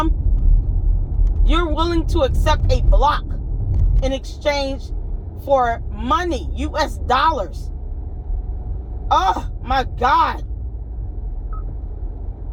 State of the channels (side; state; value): both; identical; correlation 1.00